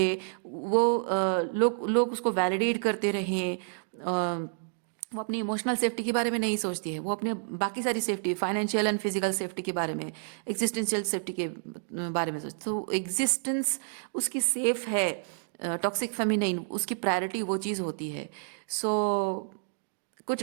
वो लोग लोग उसको वैलिडेट करते रहें। वो अपनी इमोशनल सेफ्टी के बारे में नहीं सोचती है, वो अपने बाकी सारी safety, financial and physical safety के बारे में, एग्जिस्टेंशियल सेफ्टी के बारे में सोचती। तो एग्जिस्टेंस उसकी सेफ है। टॉक्सिक फेमिनिन उसकी प्रायोरिटी वो चीज़ होती है। सो कुछ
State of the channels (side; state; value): left; silent; digital silence